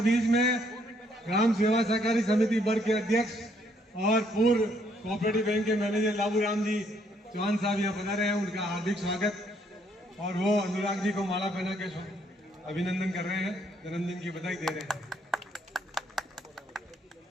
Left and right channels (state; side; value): normal; both; correlation 0.69